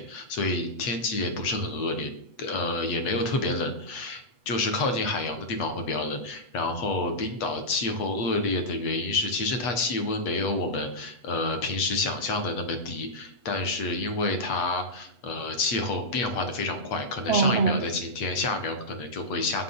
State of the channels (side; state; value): right; late; 8.2 ms